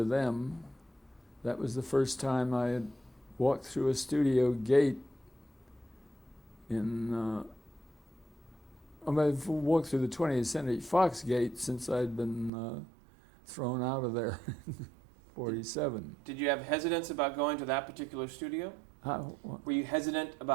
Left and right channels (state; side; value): drops out; left; at 12.5 s